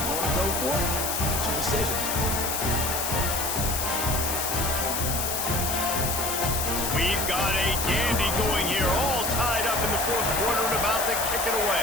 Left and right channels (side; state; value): left; noise; hiss, 1 dB below the sound